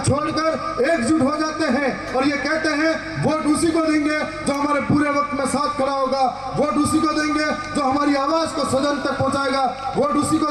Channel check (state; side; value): identical; both; correlation 1.00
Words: एकजुट हो जाते हैं और ये कहते हैं वोट उसी को देंगे जो हमारे पूरे वक्त में साथ खड़ा होगा, वोट उसी को देंगे जो हमारी आवाज को सदन तक पहुंचाएगा, वोट उसी को